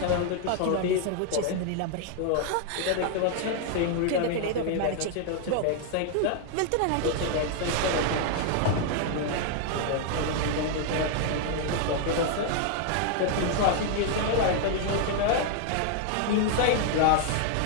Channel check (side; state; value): both; different; correlation 0.00